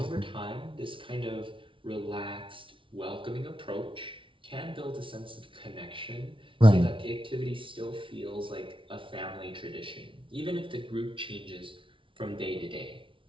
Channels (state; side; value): late; left; 0.25 ms